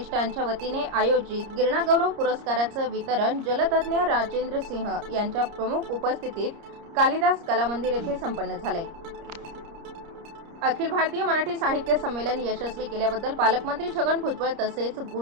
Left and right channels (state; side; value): late; left; 30 ms